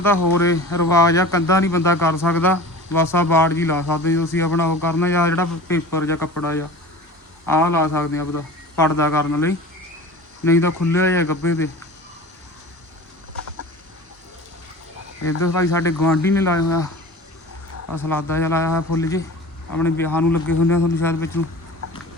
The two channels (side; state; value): both; normal; correlation 0.37